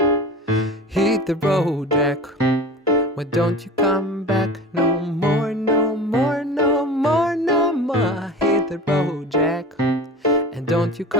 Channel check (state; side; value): normal; both; correlation 0.34